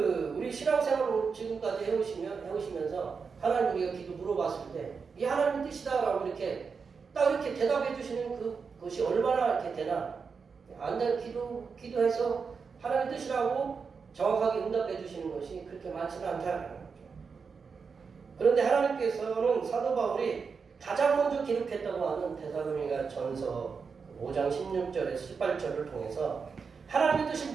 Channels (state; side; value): quieter; left; 5.5 dB